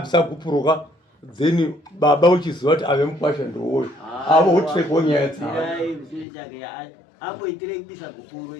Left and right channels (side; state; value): right; drops out; at 6.2 s